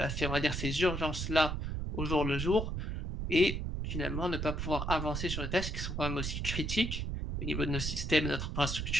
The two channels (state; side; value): noise; right; rumble, 3 dB below the sound